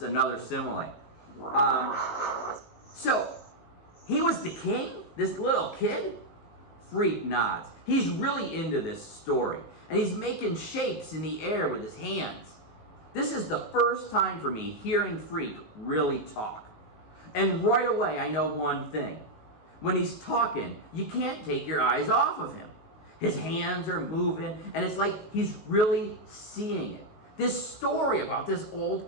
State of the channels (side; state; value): right; late; 19 ms